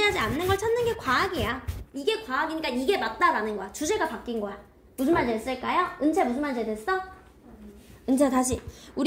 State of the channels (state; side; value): identical; both; correlation 1.00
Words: 않는 걸 찾는 게 과학이야. 이게 과학이니까 이게 맞다라는 거야. 주제가 바뀐 거야. 무슨 말인지 됐을까요? 은채 무슨 말인지 됐어? 은채 다시.